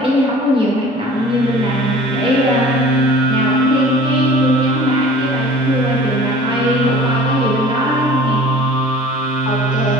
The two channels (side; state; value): both; normal; correlation 0.46